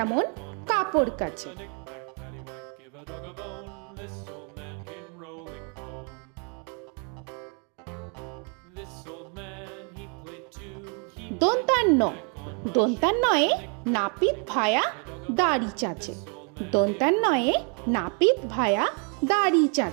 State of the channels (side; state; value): left; quieter; 38.4 dB